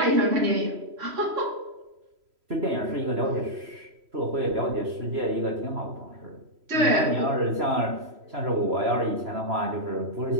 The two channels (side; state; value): left; late; 3.1 ms